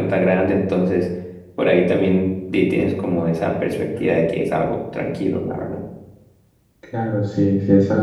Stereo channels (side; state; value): both; identical; correlation 1.00